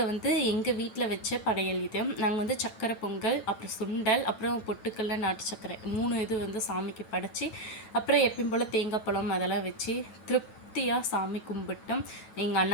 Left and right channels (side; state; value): right; late; 9.1 ms